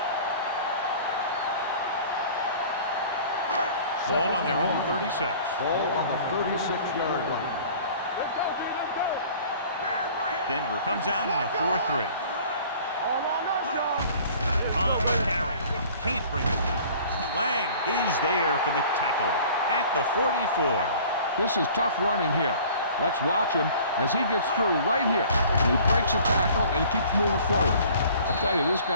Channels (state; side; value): inverted; both; correlation -0.48